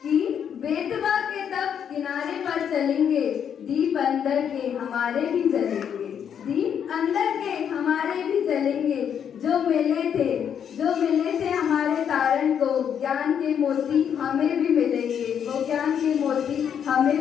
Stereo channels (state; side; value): quieter; right; 8.3 dB